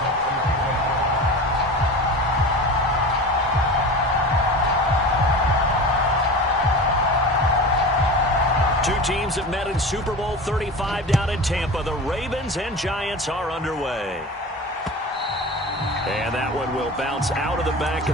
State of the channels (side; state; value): both; normal; correlation 0.31